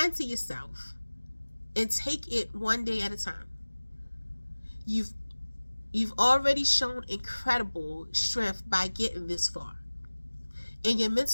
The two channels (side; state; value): both; inverted; correlation -1.00